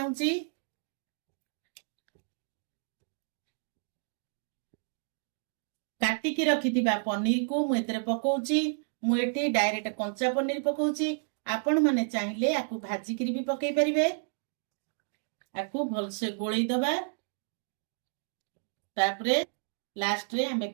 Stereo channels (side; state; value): left; silent; digital silence